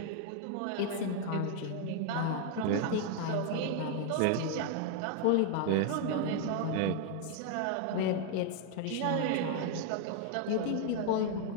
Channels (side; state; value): both; different; correlation 0.00